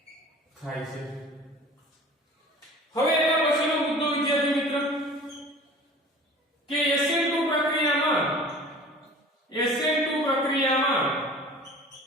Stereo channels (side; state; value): both; normal; correlation 0.43